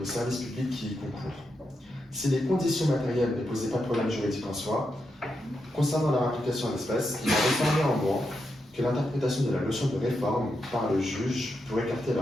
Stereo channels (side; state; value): both; normal; correlation 0.85